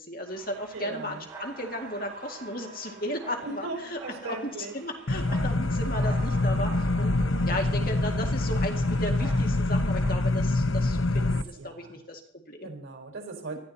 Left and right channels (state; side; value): normal; both; correlation 0.69